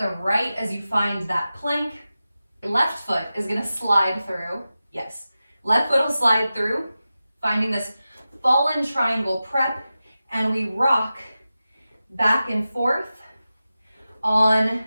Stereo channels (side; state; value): both; inverted; correlation -0.94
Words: right as you find that plank. Left foot is going to slide through. Yes, left foot will slide through, finding this fallen triangle prep, and we rock back and forth on